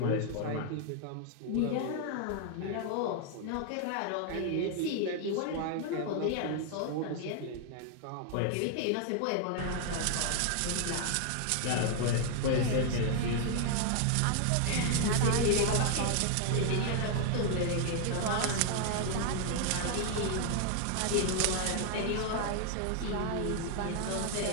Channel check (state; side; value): different; both; correlation 0.00